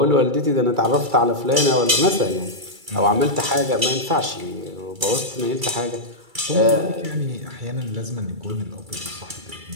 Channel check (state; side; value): late; left; 2.3 ms